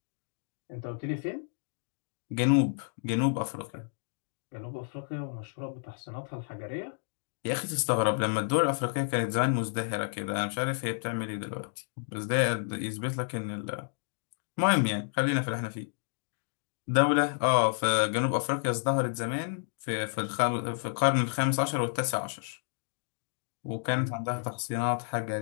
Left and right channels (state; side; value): silent; right; digital silence